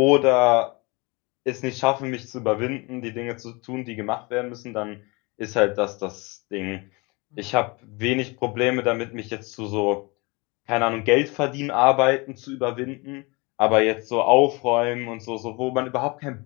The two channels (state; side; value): quieter; right; 27.0 dB